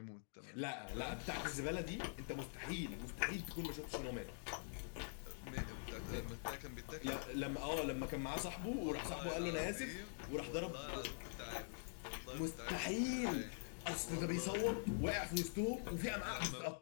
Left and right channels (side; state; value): right; silent; digital silence